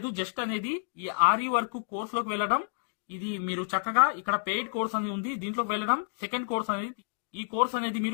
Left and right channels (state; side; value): silent; right; digital silence